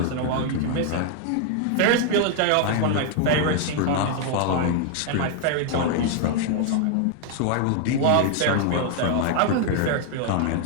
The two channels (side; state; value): both; different; correlation 0.00